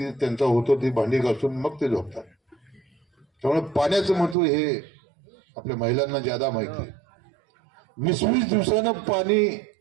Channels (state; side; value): drops out; left; at 4.4 s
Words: त्यांचा होतो ती भांडी घासून मग ते झोपतात. त्यामुळे पाण्याचं महत्व हे आपल्या महिलांना ज्यादा माहिती आहे. 20 दिवसानं पाणी